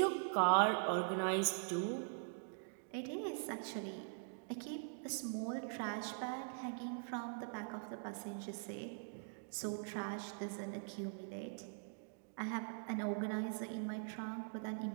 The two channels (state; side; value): silent; left; digital silence